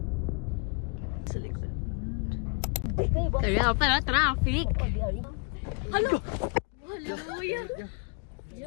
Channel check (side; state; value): right; quieter; 33.4 dB